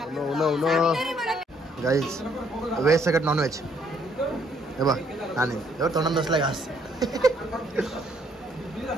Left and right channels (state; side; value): normal; both; correlation 0.67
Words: गाईस व्हेज सगळं नॉन व्हेज. हे बघ आणि एवढं तोंडात बसलाय घास.